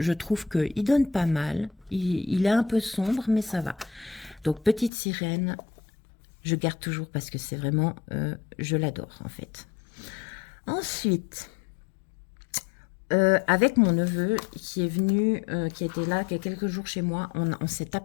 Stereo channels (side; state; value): right; drops out; at 4.9 s